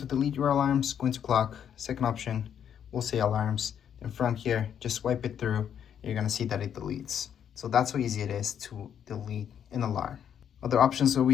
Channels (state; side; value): quieter; right; 8.8 dB